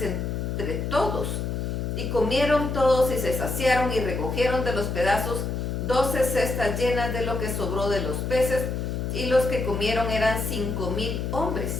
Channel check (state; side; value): noise; left; hum, 2 dB below the sound